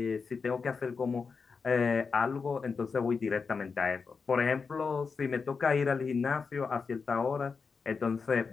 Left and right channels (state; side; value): quieter; right; 5.1 dB